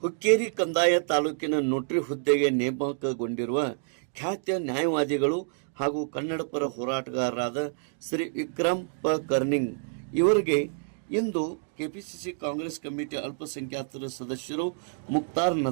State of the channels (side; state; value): left; silent; digital silence